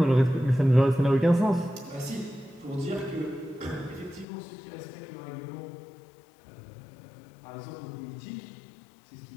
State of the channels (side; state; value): right; drops out; at 4.2 s